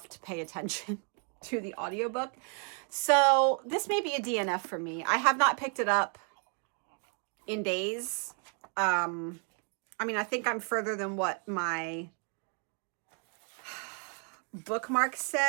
to pay attention to the audiobook. So this may be a DNF for me. I have not picked it up in days. I mean, I think I'm further than what my bookmark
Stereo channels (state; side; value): quieter; left; 38.7 dB